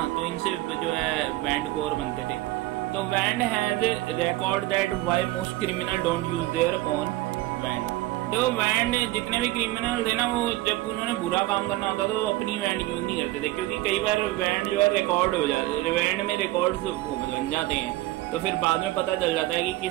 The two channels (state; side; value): quieter; left; 17.7 dB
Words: तो इनसे जो है बैंड कोर बनते थे। तो band has record that why most criminal don't use their own band. देखो बैंड जितने भी क्रिमिनल थे ना, वो जब उन्होंने बुरा काम करना होता था तो अपनी बैंड यूज नहीं करते थे, क्योंकि कई बार बैंड जो है रिकॉर्ड हो जाते, बैंड में रिकॉर्ड्स बन जाते हैं, तो फिर बाद में पता चल जाता है कि